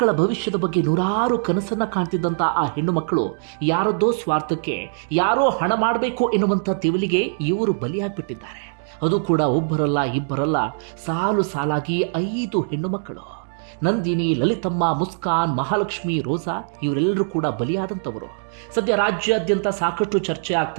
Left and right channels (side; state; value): left; silent; 64 dB below the other